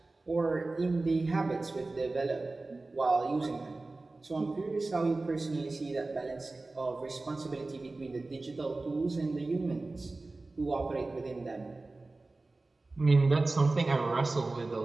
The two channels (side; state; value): left; quieter; 3.3 dB